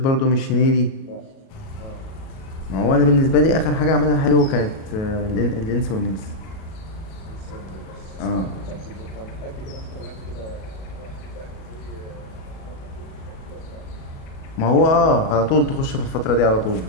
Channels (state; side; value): late; right; 37 ms